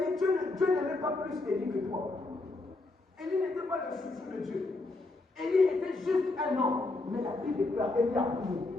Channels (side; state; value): right; quieter; 3.2 dB